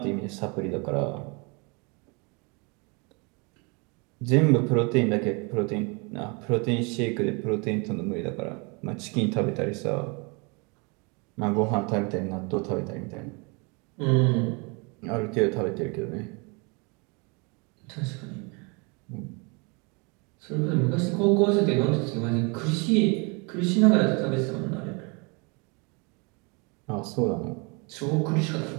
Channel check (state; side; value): quieter; left; 31.2 dB